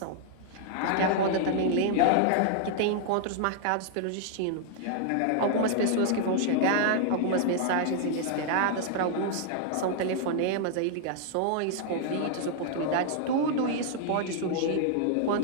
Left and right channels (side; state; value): both; different; correlation -0.01